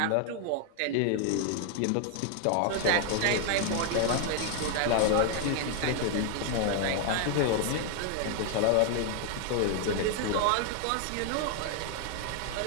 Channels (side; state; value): both; different; correlation 0.00